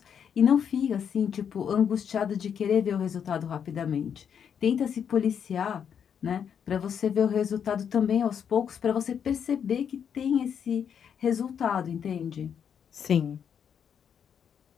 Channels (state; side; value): quieter; right; 7.9 dB